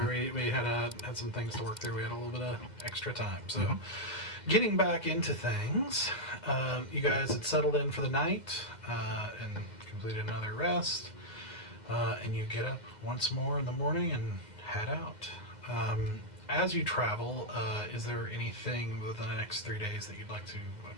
we had some things to work through. We had a little bit of extra time. So, getting back into things, you guys had settled in for the night and completed another rest, and you get up once more in the morning and head out. As you travel, is there anything within the next 3 days that you'd like to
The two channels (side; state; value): left; late; 2.0 ms